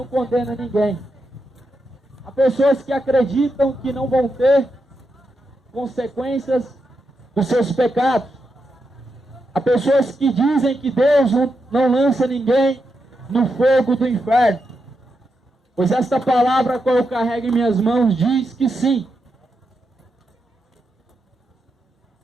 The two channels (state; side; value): normal; both; correlation 0.85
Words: condena ninguém. Há pessoas que acreditam que não vão ter consequências dos seus pecados. Há pessoas que dizem que Deus não lança ninguém no fogo do inferno. Pois esta palavra, qual eu carrego em minhas mãos, diz que sim.